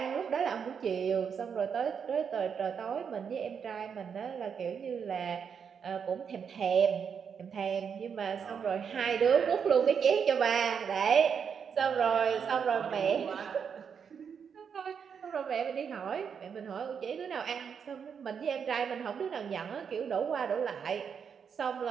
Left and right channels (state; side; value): quieter; left; 6.9 dB